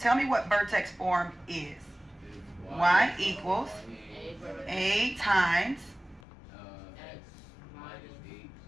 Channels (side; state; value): right; drops out; at 6.2 s